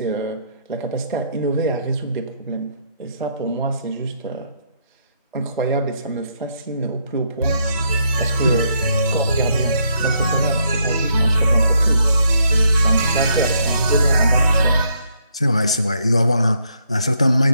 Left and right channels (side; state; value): both; inverted; correlation -0.74